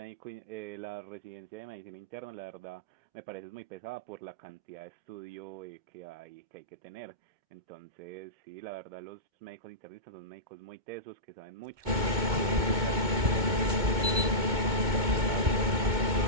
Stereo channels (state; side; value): late; left; 2.2 ms